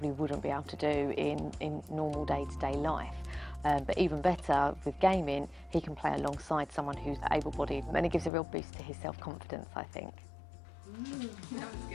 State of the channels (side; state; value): right; drops out; at 8.3 s